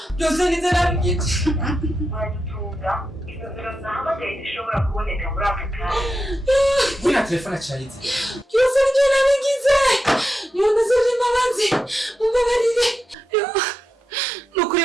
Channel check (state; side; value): normal; both; correlation 0.87